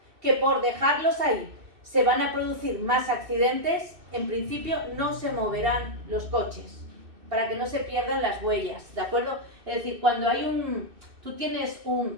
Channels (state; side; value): late; left; 2.6 ms